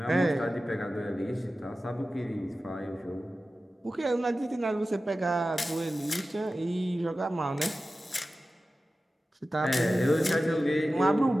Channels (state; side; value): normal; both; correlation 0.95